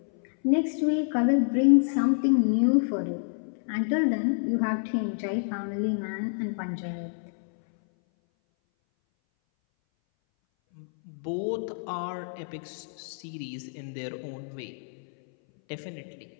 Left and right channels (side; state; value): right; silent; 59 dB below the other